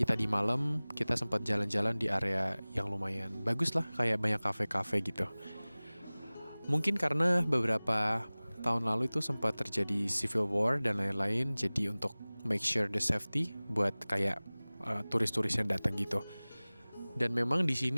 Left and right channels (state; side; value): inverted; both; correlation -1.00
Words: tadi malam kita sempat jalan-jalan di area yang lumayan bagus lah, kayak banyak kafe-kafe gitu. Mungkin karena beberapa tahun lalu itu sempat terjadi civil war dan lain-lain, jadi untuk make sure the safety buat kayak turis-turis yang datang gitu. Dan memang di